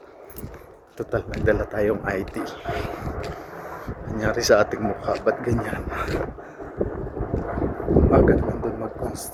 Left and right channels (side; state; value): both; identical; correlation 1.00